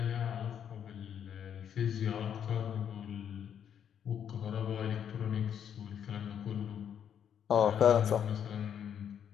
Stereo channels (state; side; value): quieter; right; 8.7 dB